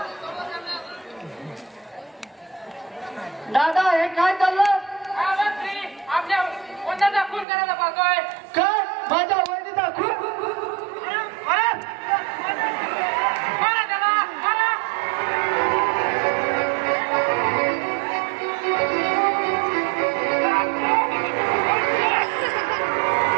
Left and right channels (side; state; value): left; drops out; at 7.5 s